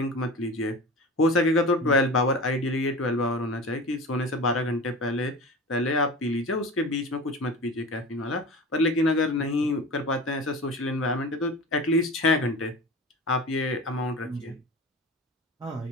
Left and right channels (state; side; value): normal; both; correlation 0.33